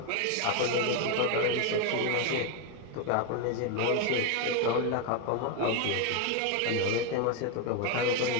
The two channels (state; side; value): different; both; correlation 0.01